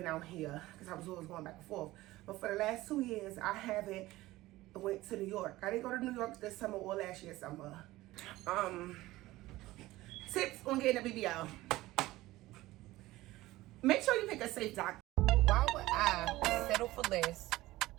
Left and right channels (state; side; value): quieter; left; 17.7 dB